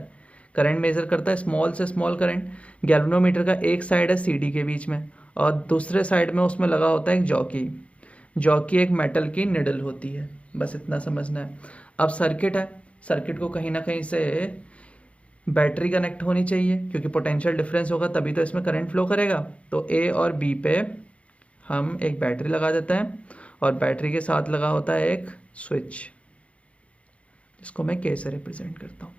करंट मेजर करता है, स्मॉल से स्मॉल करंट। गैल्वेनोमीटर का एक साइड है सी डी के बीच में और दूसरे साइड में उसमें लगा होता है एक जॉकी। जॉकी एक मेटल की निडल होती है, बस इतना समझना है। अब सर्किट है, सर्किट को कहीं ना कहीं से बैटरी कनेक्ट होनी चाहिए क्योंकि पोटेंशियल डिफरेंस होगा तभी तो इसमें करंट फ्लो करेगा। तो ए और बी पे हम एक बैटरी लगा देते हैं और बैटरी के साथ लगा होता है एक स्विच जिसको मैं के से रिप्रेजेंट करता हूँ।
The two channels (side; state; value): right; late; 0.063 ms